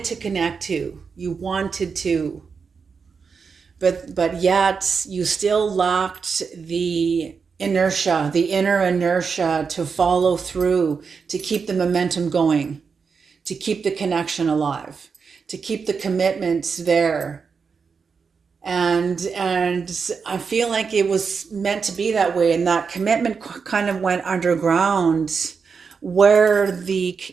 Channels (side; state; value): left; quieter; 5.6 dB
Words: to connect to. You wanted to. But yet you still lacked the inertia, the inner inertia to follow through, to keep the momentum going, to keep the connection alive, to keep the commitment there. And I feel like it was meant to be that way, and that commitment kind of went underground, where